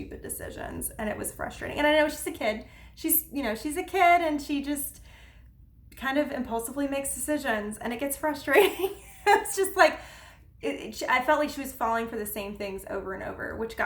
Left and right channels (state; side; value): identical; both; correlation 1.00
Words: decisions, and it was frustrating. And I know she's a kid. She's a kid, and she just kind of impulsively makes decisions, and it gets frustrating. It's just like, I felt like she was falling for the same things over and over, which